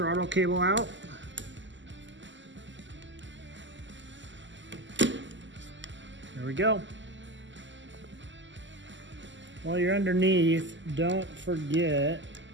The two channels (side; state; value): left; late; 0.54 ms